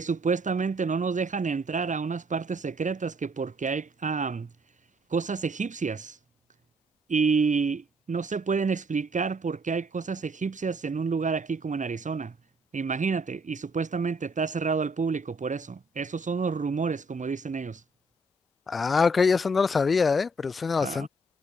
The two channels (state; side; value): normal; both; correlation 0.66